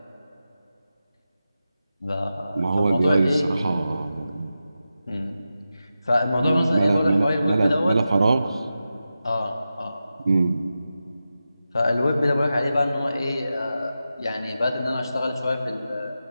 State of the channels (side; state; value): both; inverted; correlation -0.91